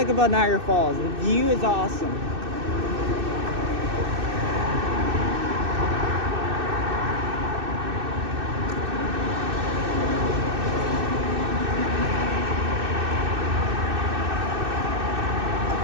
about Niagara Falls. The view is awesome.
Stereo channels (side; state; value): left; late; 2.6 ms